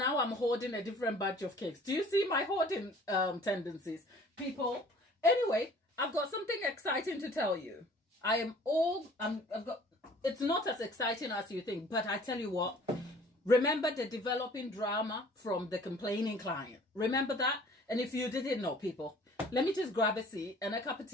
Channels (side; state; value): both; normal; correlation 0.51